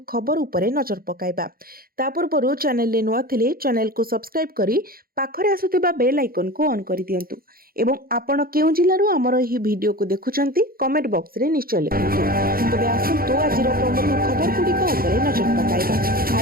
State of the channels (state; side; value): late; left; 0.43 ms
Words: खबर उपरे नजर पकाइबा। ता पूर्व चैनल नुआ थिले चैनल को सब्सक्राइब करी पाखरे आसुथिबा बेल आइकन को ऑन कर दियंतु एवं आपण केउ जिल्लारु हमर एही वीडियो को देखुचंती कमेंट बॉक्स रे निश्चय लिखंतु। तबे आसतु आज प्रमुख खबर गुड़िक उपरे नजर पकाइबा।